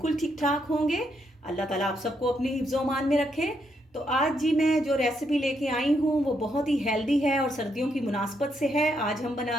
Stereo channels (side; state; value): both; normal; correlation 0.77